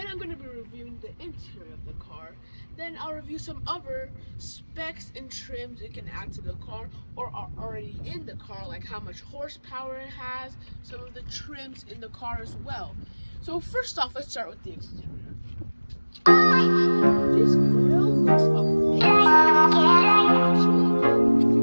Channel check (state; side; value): inverted; both; correlation -1.00